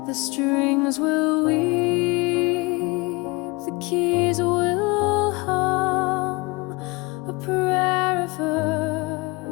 The strings will weep, the keys will hum, a prayer of earth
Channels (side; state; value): right; quieter; 25.3 dB